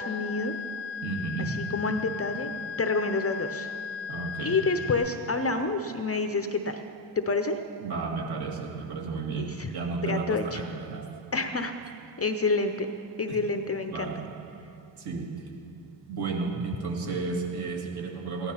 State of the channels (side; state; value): both; normal; correlation 0.06